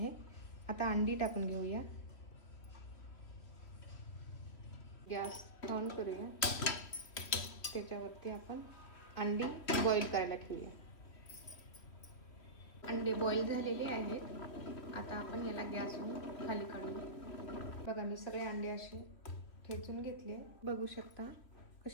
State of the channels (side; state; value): right; late; 3.1 ms